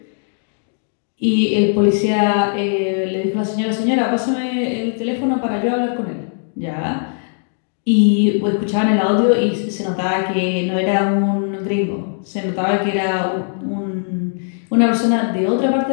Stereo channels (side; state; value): right; silent; digital silence